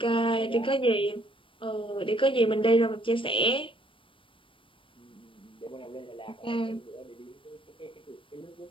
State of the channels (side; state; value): right; late; 0.25 ms